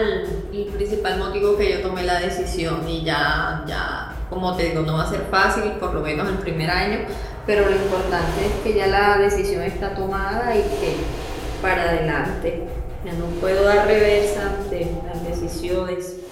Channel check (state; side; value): identical; both; correlation 1.00